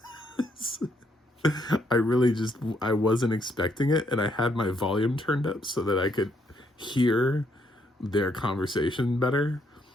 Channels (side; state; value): both; normal; correlation 0.73